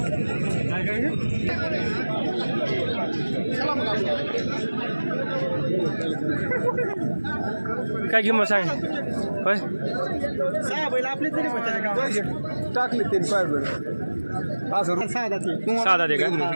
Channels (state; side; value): inverted; both; correlation -1.00